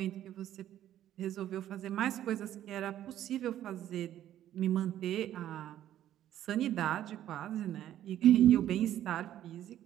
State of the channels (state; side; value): quieter; left; 12.0 dB